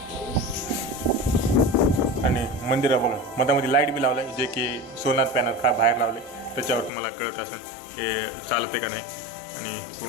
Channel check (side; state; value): right; drops out; at 6.9 s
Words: आणि मंदिर बघा मधामध्ये लाईट बी लावलं आहे, जे की सोनार पॅनल बाहेर लावले, त्याच्यावर तुम्हाला कळत असेल हे चालते का नाही. आणि